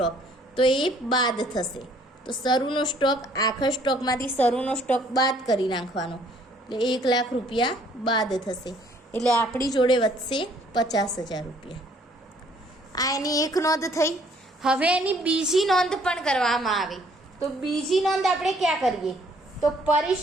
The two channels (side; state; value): both; normal; correlation 0.62